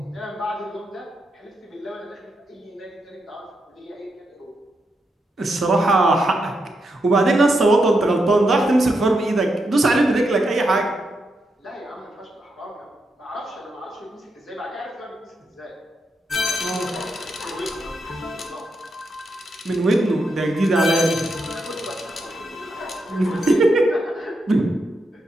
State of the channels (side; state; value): both; normal; correlation 0.83